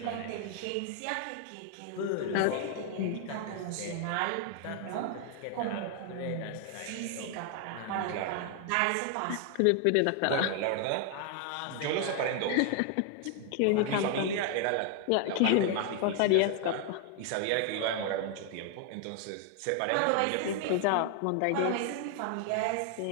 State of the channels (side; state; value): both; different; correlation 0.00